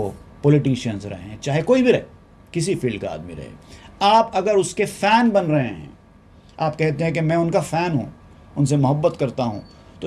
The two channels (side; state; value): both; identical; correlation 1.00